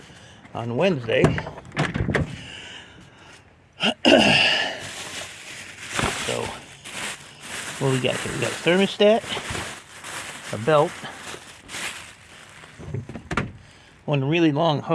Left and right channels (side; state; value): both; identical; correlation 1.00